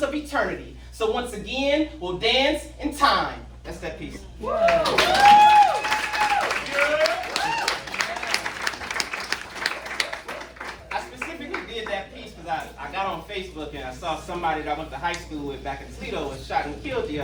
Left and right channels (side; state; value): both; identical; correlation 1.00